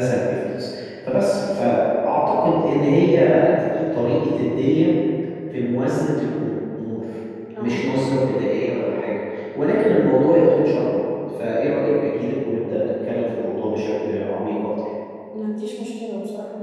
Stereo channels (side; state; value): both; identical; correlation 1.00